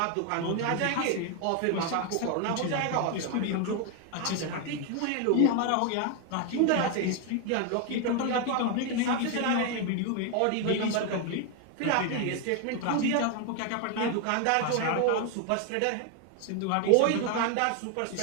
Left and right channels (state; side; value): different; both; correlation 0.01